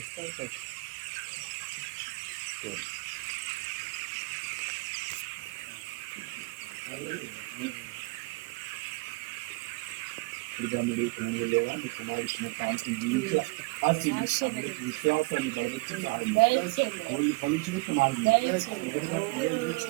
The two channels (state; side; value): quieter; left; 26.0 dB